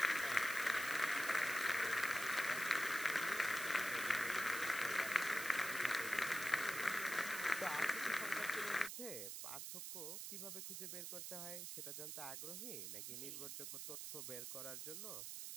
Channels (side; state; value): right; noise; hiss, 6 dB below the sound